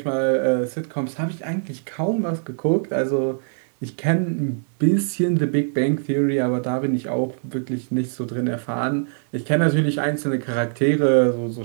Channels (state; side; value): silent; left; digital silence